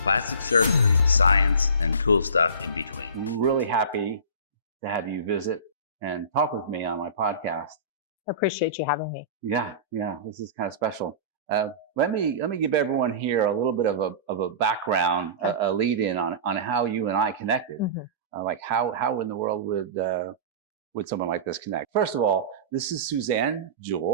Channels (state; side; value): inverted; both; correlation -0.34